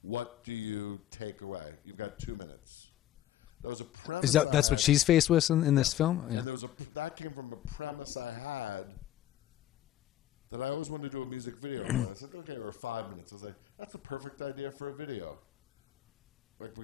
What do you take away? You've got 2 minutes. That was a premise I had. That's what she's faced with in this film? And that came from a premise I had that I always wanted to do a music video for it. I said, okay, or 5 minutes. I was like, that's the perfect idea for a video. Like,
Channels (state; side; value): quieter; right; 12.7 dB